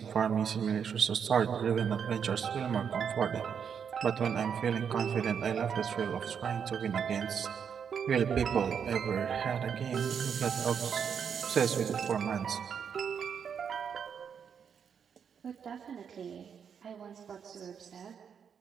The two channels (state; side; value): quieter; left; 7.3 dB